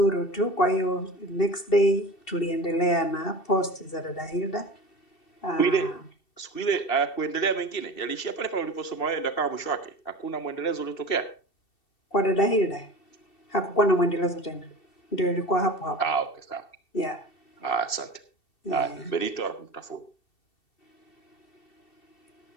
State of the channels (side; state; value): right; late; 2.7 ms